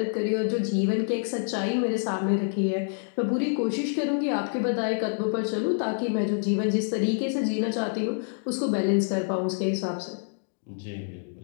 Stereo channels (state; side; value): silent; right; digital silence